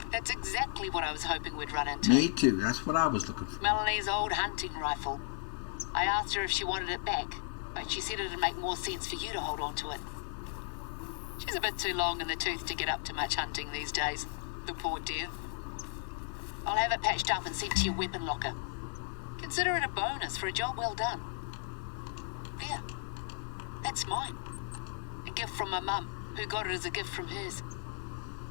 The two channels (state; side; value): silent; right; 54 dB below the other